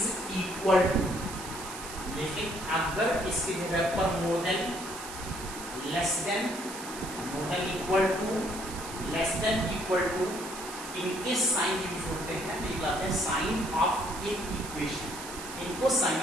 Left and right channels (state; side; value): noise; right; hiss, 11 dB below the sound